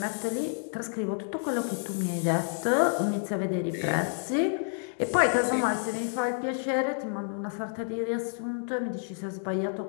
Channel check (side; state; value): right; silent; digital silence